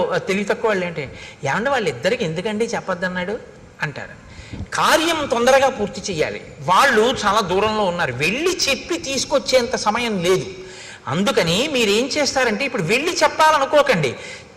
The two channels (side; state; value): both; identical; correlation 1.00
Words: తెలివి తక్కువ వాళ్ళు ఏంటి, ఏమంటే వాళ్ళిద్దరికి ఎందుకండి చెప్పొద్దన్నాడు అంటారు. కార్యం తొందరగా పూర్తి చేయాలి. వాళ్ళు చాలా దూరంలో ఉన్నారు, వెళ్ళి చెప్పి తీసుకొచ్చేంత సమయం లేదు. అందుకని మీరేం చేస్తారంటే ఇప్పుడు వెళ్ళి చెప్పాలనుకోకండి,